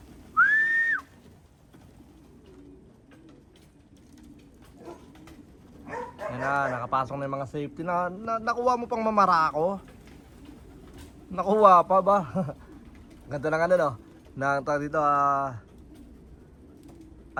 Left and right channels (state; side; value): identical; both; correlation 1.00